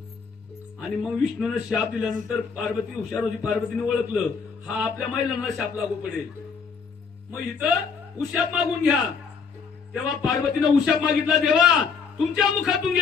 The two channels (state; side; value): quieter; right; 5.7 dB